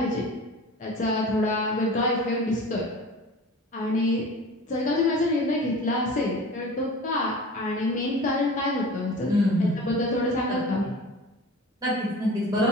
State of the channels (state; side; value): normal; both; correlation 0.38